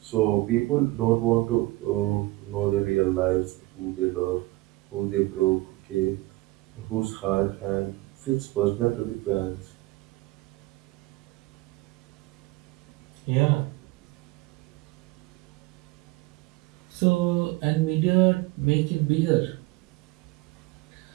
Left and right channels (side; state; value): left; quieter; 20.7 dB